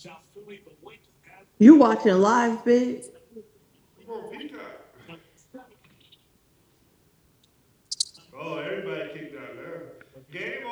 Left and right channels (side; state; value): both; identical; correlation 1.00